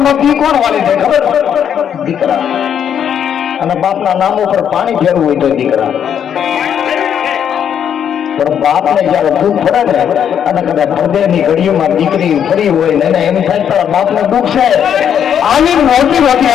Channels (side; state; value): right; quieter; 8.7 dB